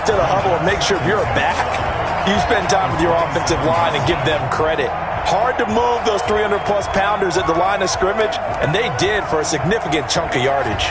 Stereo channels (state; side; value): identical; both; correlation 1.00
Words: to the huddle and make sure if you're a back, you spend time with your offensive line and give them credit. Hard to move those 300-plus pounders at the line of scrimmage, and they did for a significant chunk of